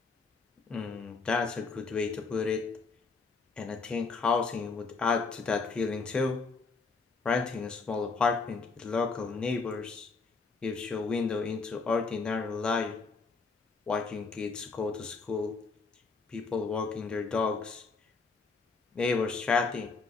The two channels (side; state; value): right; quieter; 4.4 dB